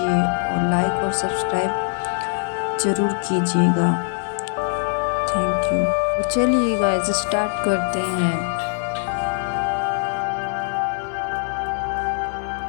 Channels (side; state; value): right; silent; 58 dB below the other